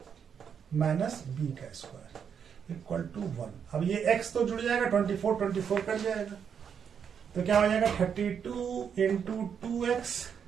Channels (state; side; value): quieter; left; 7.4 dB